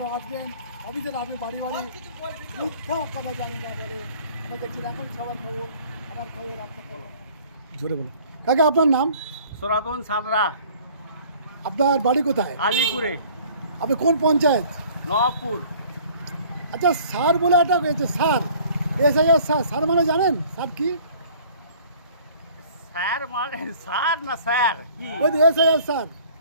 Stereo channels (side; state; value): both; inverted; correlation -0.52